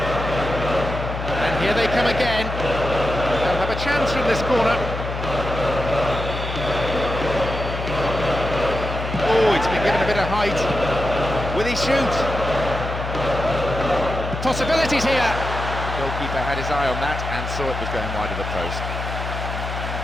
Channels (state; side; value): noise; left; hum, 6 dB below the sound